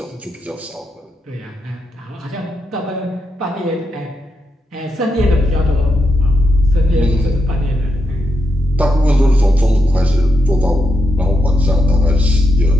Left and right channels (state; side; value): normal; both; correlation 0.84